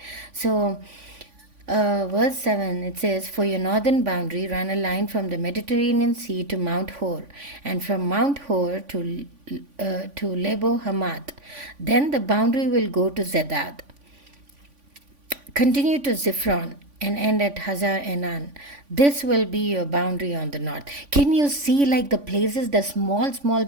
So, verse 7 it says, "For your northern boundary, run a line from the Mediterranean Sea to Mount Hor, and from Mount Hor to Lebo Hamath. Then the boundary will go to Zedad, continue to Ziphron, and end at Hazar Addar. This will be your boundary on the north." Can you see like the places, the small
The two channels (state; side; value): late; left; 3.5 ms